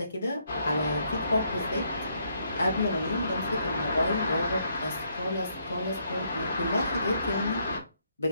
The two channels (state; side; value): inverted; both; correlation -0.73